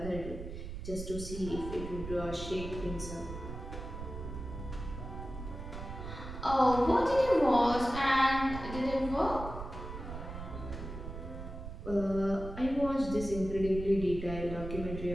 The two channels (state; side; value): noise; right; rumble, 9 dB below the sound